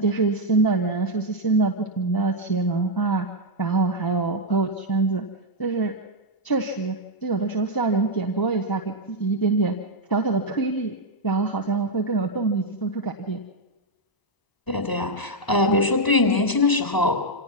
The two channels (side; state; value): right; late; 1.0 ms